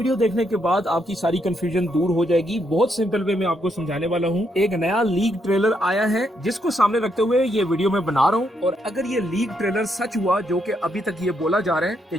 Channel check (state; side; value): normal; both; correlation 0.77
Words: देखने के बाद आपकी सारी कंफ्यूजन दूर हो जाएगी। बहुत सिंपल वे में आपको समझाने वाला हूँ। एक नया लीक ट्रेलर आया है जिसको सामने रखते हुए ये वीडियो मैं बना रहा हूँ। और अगर ये लीक ट्रेलर सच हुआ, जो कि अभी तक ये बोला जा रहा है कि